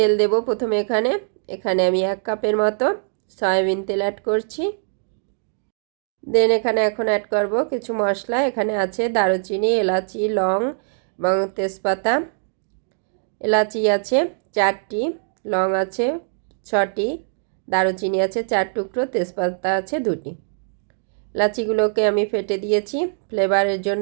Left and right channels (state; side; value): silent; left; digital silence